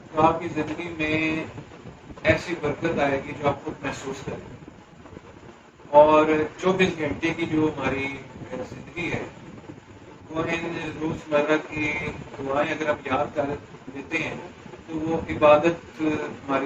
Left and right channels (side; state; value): both; identical; correlation 1.00